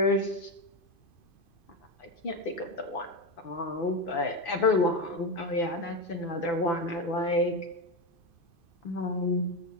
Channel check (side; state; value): right; late; 2.5 ms